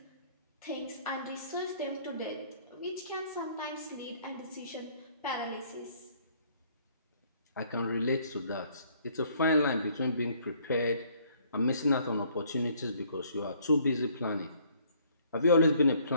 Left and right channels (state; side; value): inverted; both; correlation -0.62